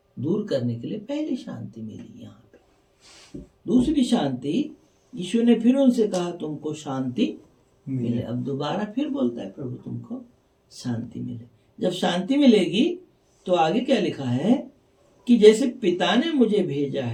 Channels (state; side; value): identical; both; correlation 1.00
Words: दूर करने के लिए पहली शांति मिली यहाँ पे। दूसरी शांति, यीशु ने फिर उनसे कहा, तुमको शांति मिले। अब दोबारा फिर बोलता है प्रभु, तुमको शांति मिले। जब शांति मिलेगी तो आगे क्या लिखा है कि जैसे पिता ने मुझे भेजा